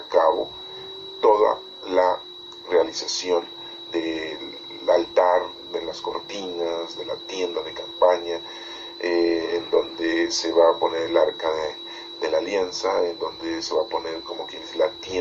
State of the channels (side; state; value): both; identical; correlation 1.00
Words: cabo toda la realización del altar, de las cortinas, de la tienda de campaña, en donde se va a poner el arca de la alianza, en donde se va a poner, como quien dice, la